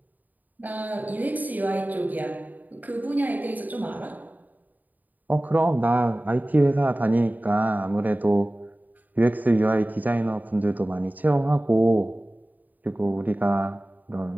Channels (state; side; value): late; left; 0.083 ms